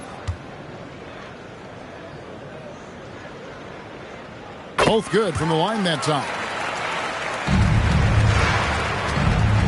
Both good from the line that time.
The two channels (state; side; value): identical; both; correlation 1.00